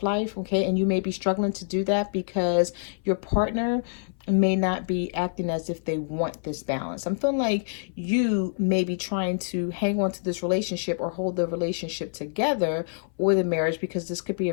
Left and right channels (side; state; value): right; silent; 61 dB below the other